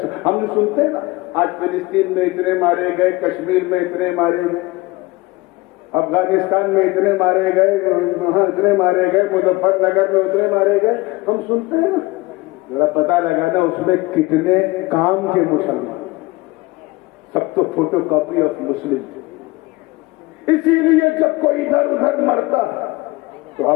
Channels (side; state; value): right; quieter; 21.7 dB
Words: ہم نے سنتے ہیں نا، آج فلسطین میں اتنے مارے گئے، کشمیر میں اتنے مارے گئے، افغانستان میں اتنے مارے گئے، وہاں اتنے مارے گئے، مظفر نگر میں اتنے مارے گئے، ہم سنتے ہیں نا، ذرا پتہ لگانا اس میں کتنے کام کے مسلمان، سب تو فوٹو کاپی آف مسلم۔ اسی لیے جب کوئی ادھر ادھر مرتا تو